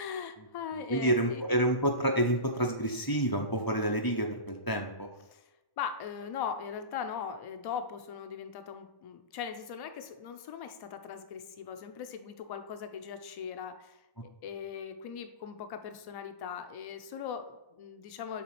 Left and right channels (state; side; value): late; right; 1.1 ms